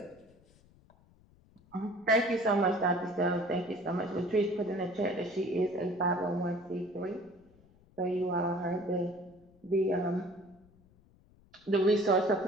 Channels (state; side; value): noise; left; rumble, 29 dB below the sound